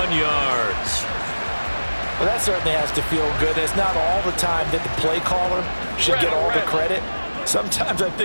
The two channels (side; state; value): both; inverted; correlation -1.00